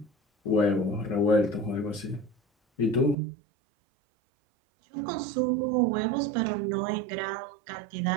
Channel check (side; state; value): left; drops out; at 3.2 s